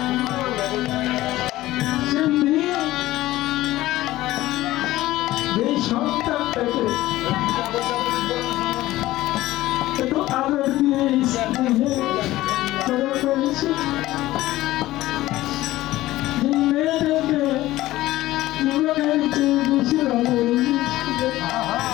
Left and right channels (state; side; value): quieter; right; 16.4 dB